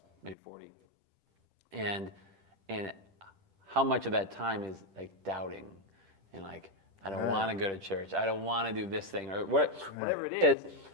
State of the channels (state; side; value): late; left; 10 ms